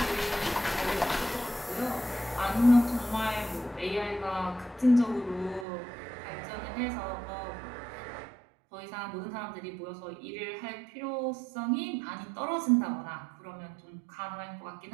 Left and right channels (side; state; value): left; drops out; at 5.7 s